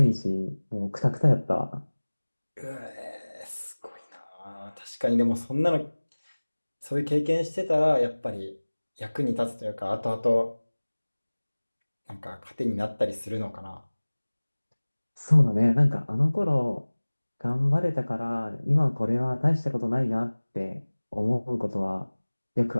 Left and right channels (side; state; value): both; inverted; correlation -1.00